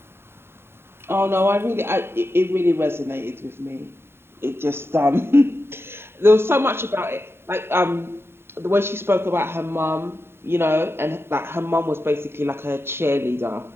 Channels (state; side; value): late; left; 0.11 ms